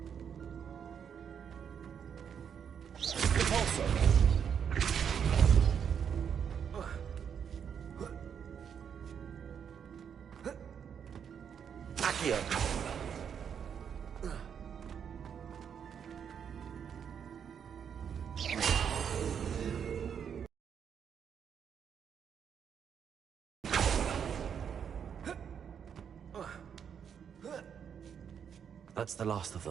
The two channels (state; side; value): quieter; left; 7.7 dB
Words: Repulsor! Accio! That's the last of